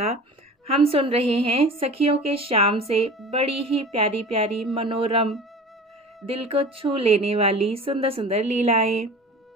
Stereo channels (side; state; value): both; normal; correlation 0.38